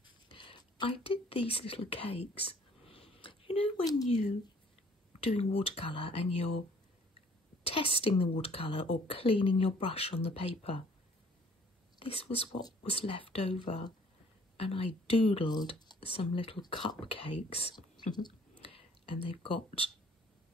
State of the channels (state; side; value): normal; both; correlation 0.58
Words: I did these little cakes. You know when you doing watercolour and you're testing the watercolour or cleaning your brush on the paper? This was what was left over, and I doodled some little cupcakes. And they've got